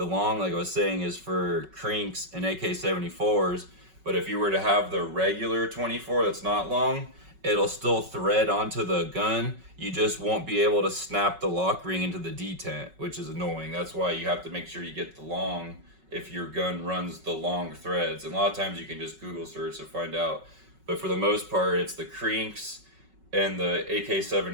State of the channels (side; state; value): left; late; 5.3 ms